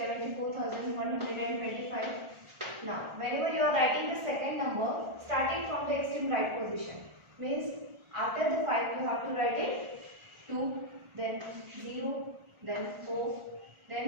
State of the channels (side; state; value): left; late; 1.4 ms